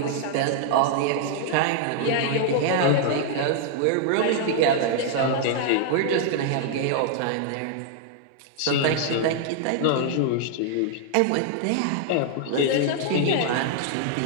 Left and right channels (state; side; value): different; both; correlation 0.00